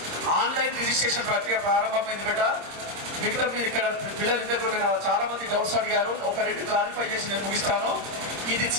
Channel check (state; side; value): late; left; 26 ms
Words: ఆన్లైన్ రిజిస్ట్రేషన్ ప్రక్రియ ప్రారంభమైంది బేట. మిగతా మీరు ఇక్కడ పిల్లలు దగ్గర చాలా మంది డౌట్స్ అడిగారు. ఒక 2 క్లారిఫై చేసి నేను ముగిస్తాను. ఇది